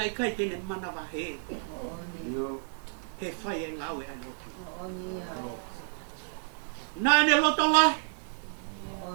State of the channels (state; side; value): silent; left; 57 dB below the other